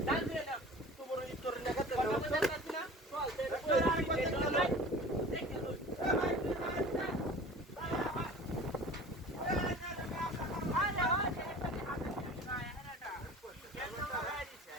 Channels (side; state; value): both; normal; correlation 0.41